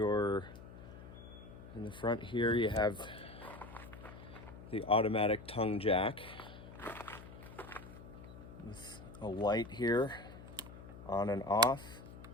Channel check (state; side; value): noise; left; hum, 15 dB below the sound